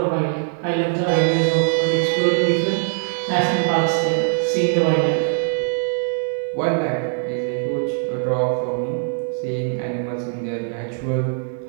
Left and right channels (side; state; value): left; silent; 63 dB below the other